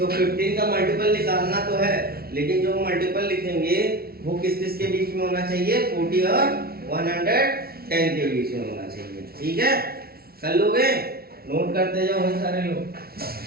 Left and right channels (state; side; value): late; left; 0.44 ms